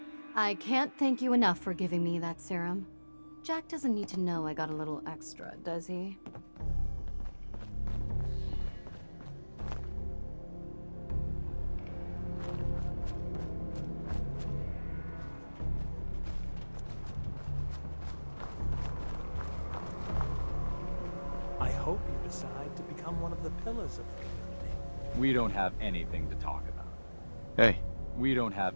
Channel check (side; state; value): both; inverted; correlation -1.00